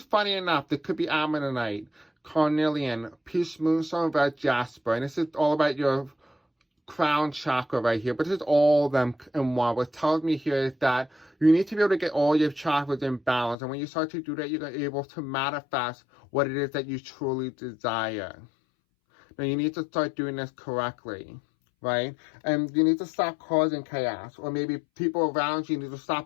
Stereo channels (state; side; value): drops out; right; at 13.6 s